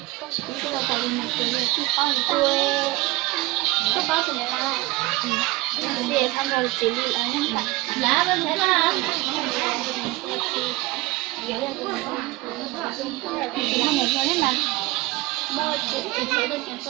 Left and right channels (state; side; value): quieter; left; 20.9 dB